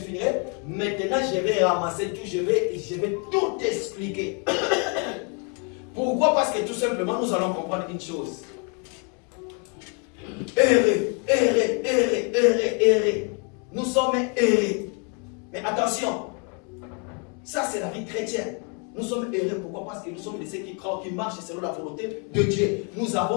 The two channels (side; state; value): right; quieter; 37.1 dB